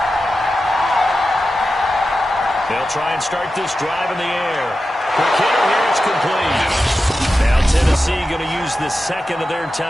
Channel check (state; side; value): normal; both; correlation 0.92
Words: They'll try and start this drive in the air. Quick hitter here, it's complete. Now Tennessee going to use the second of their